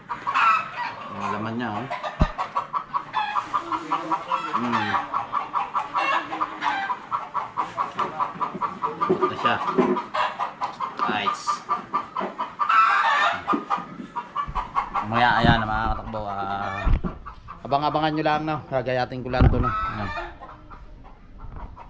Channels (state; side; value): identical; both; correlation 1.00